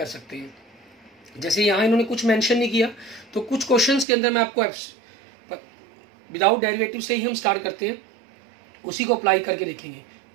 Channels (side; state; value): left; drops out; at 4.0 s